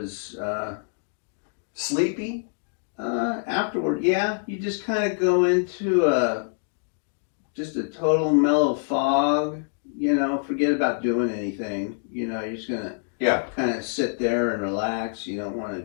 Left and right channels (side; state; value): right; silent; digital silence